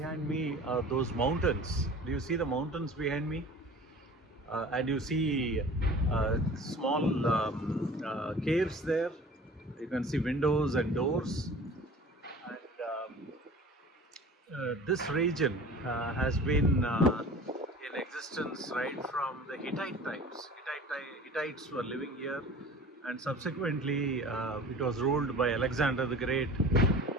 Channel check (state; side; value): normal; both; correlation 0.42